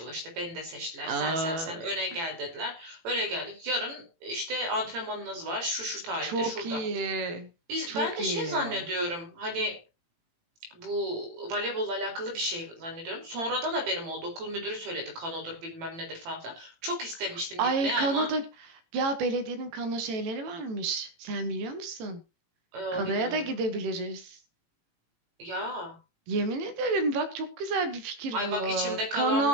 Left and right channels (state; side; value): late; left; 18 ms